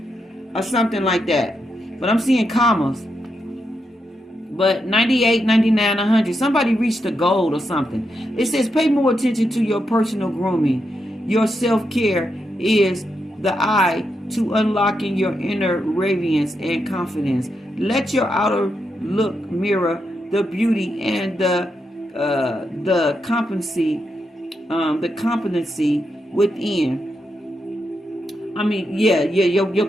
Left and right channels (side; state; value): both; normal; correlation 0.84